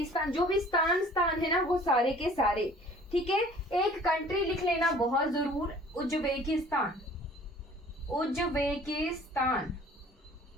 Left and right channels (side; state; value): both; normal; correlation 0.51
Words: जो भी स्थान है ना वो सारे के सारे, ठीक है। एक कंट्री लिख लेना बहुत जरूर,